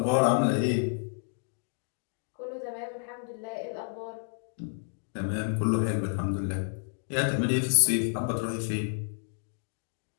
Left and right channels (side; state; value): right; silent; digital silence